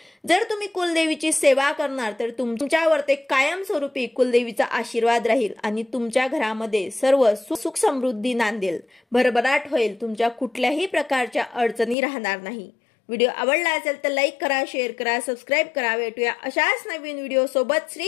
जर तुम्ही कुलदेवीची सेवा करणार तर तुमच्यावर ते कायमस्वरूपी कुलदेवीचा आशीर्वाद राहील आणि तुमच्या घरामध्ये सर्व सुख समृद्धी नांदेल, भरभराट होईल, तुमच्या कुठल्याही प्रकारच्या अडचणी राहणार नाही। व्हिडिओ आवडला असेल तर लाईक करा, शेअर करा, सबस्क्राईब करा। भेटूया अशाच नवीन व्हिडिओ सोबत।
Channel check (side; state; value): right; drops out; at 12.0 s